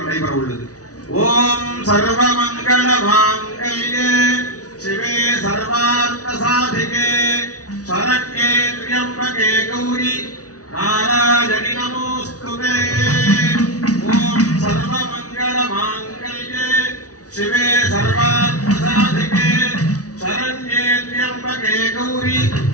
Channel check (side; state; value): right; late; 0.67 ms